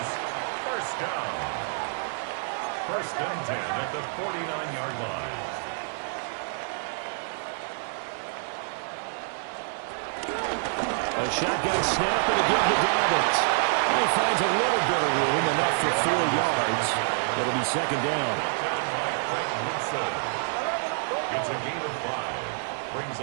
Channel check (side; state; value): left; silent; 60 dB below the other